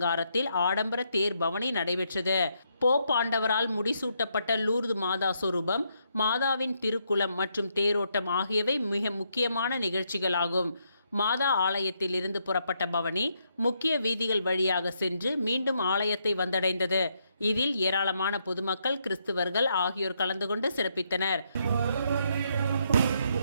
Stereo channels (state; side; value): inverted; both; correlation -0.76